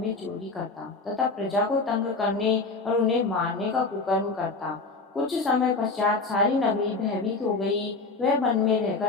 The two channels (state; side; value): quieter; right; 3.8 dB